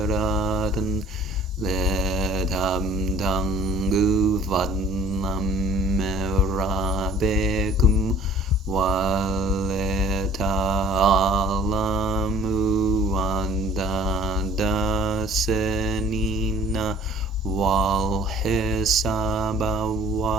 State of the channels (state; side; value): normal; both; correlation 0.52